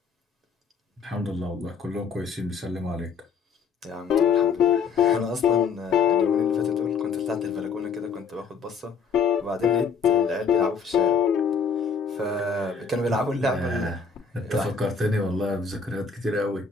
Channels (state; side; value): quieter; right; 5.7 dB